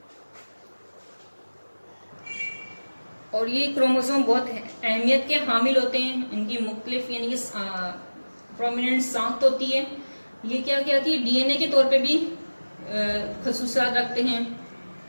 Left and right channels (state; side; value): inverted; both; correlation -1.00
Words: और ये क्रोमोसोम बहुत अहमियत के हामिल होते हैं, इनकी मुख्तलिफ यानी कि प्रोमिनेंट साख्त होती है। ये क्या कहती है, डीएनए के तौर पे भी खसूसियात रखते हैं,